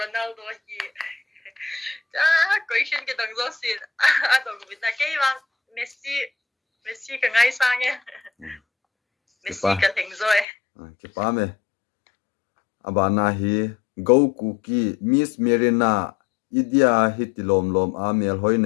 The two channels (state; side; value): drops out; right; at 10.5 s